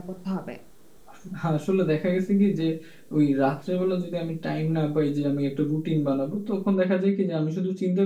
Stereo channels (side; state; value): both; identical; correlation 1.00